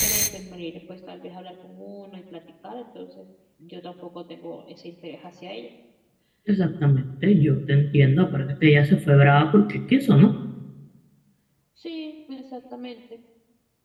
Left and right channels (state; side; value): identical; both; correlation 1.00